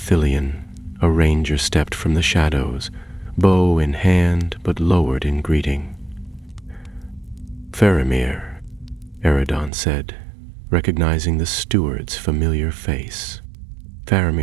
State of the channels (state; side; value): drops out; left; at 9.7 s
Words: a ranger stepped from the shadows, bow in hand but lowered in greeting. "Faramir," Eridan said, recognizing the steward's familiar face.